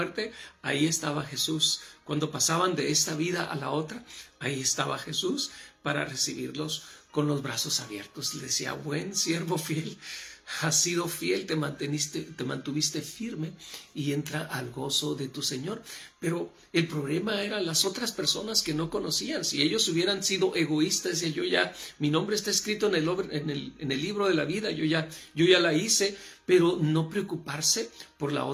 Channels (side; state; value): both; identical; correlation 1.00